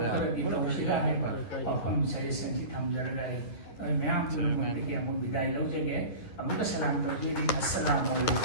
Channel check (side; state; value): right; late; 10 ms